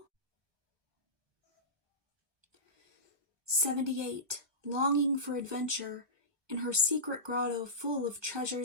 78. Longing for adventure. In her secret grotto full of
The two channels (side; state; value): left; late; 1.2 ms